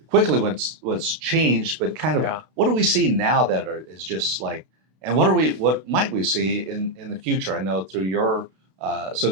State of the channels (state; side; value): late; left; 32 ms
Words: Quickly what's changed, but kind of what do we see now that is just like, and what might we see in the future? I know through your